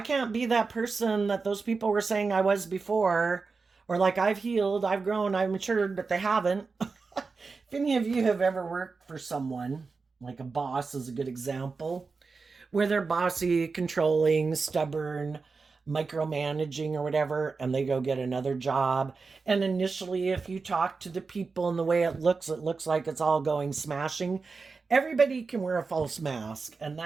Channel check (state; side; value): quieter; left; 4.5 dB